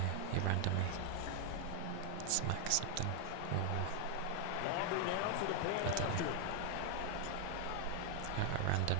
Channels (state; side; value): different; both; correlation 0.00